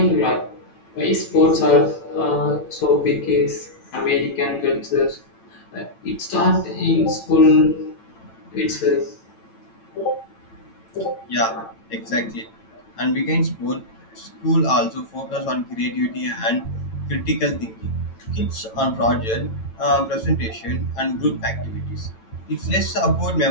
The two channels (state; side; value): late; right; 9.0 ms